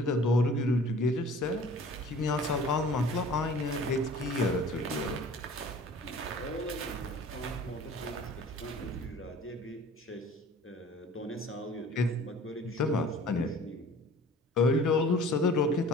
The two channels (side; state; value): both; normal; correlation 0.47